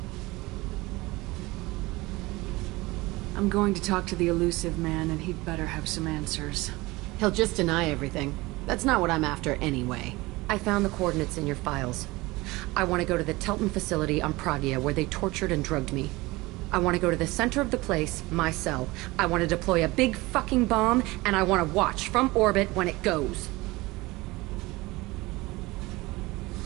I'm going to talk to the Elusive Man, and he'd better have some answers. He'll just deny everything. That's not what I'm after anyway. I found the coordinates in your files. I want to go to the Telton facility on Pragia where they tortured and drugged me. I want to go to the center of the place, my cell. I want to deploy a big fucking bomb, and I want to watch from orbit when it goes.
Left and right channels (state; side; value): quieter; left; 21.4 dB